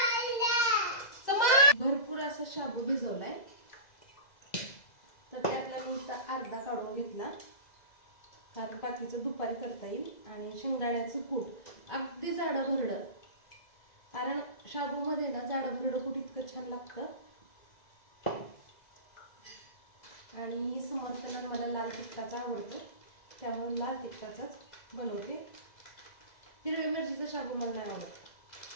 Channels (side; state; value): right; late; 2.0 ms